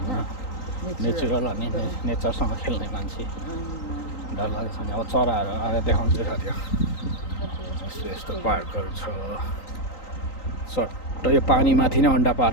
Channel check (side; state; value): right; late; 3.9 ms